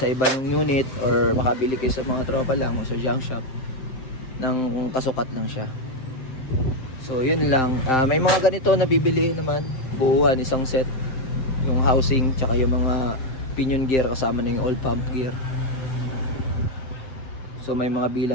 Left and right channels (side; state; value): right; late; 7.7 ms